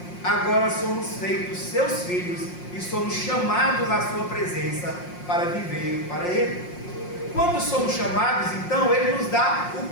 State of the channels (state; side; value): late; right; 5.6 ms